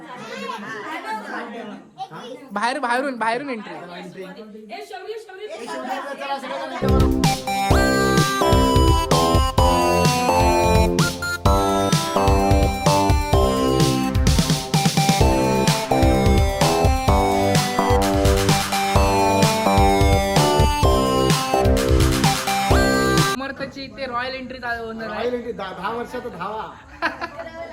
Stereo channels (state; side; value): identical; both; correlation 1.00